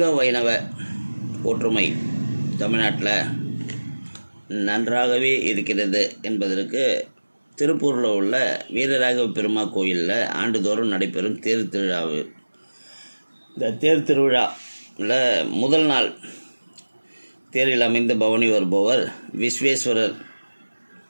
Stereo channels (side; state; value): both; inverted; correlation -1.00